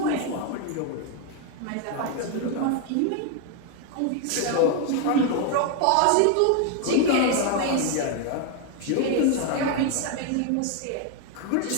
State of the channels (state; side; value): different; both; correlation 0.01